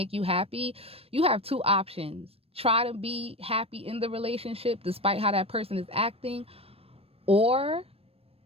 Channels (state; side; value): late; left; 0.28 ms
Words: you happy, you have two options. Try to be happy in the relationship despite how that person is acting, or